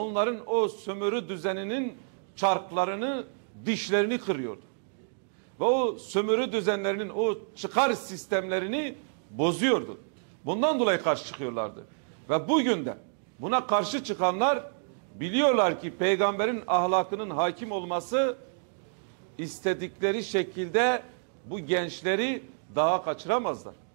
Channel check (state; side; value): silent; left; digital silence